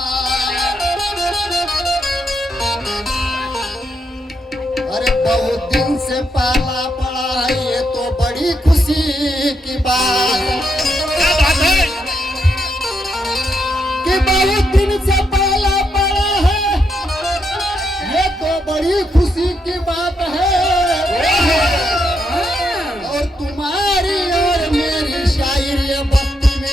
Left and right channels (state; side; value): normal; both; correlation 0.80